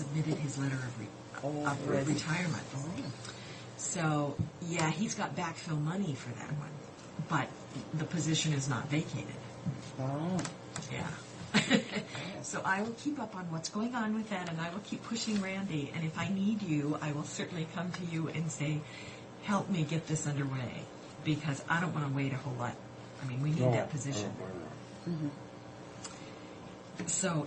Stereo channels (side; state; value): both; identical; correlation 1.00